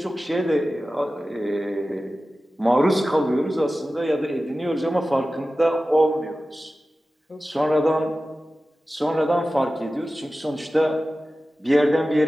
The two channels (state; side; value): normal; both; correlation 0.95